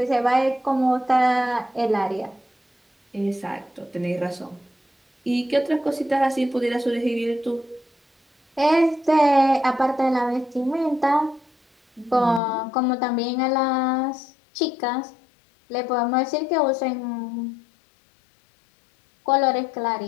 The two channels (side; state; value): right; drops out; at 12.4 s